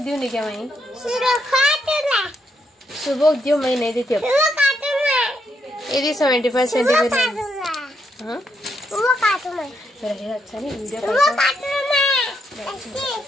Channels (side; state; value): both; normal; correlation 0.78